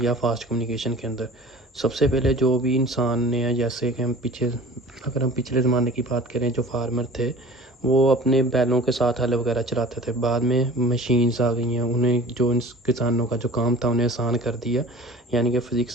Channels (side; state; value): both; normal; correlation 0.42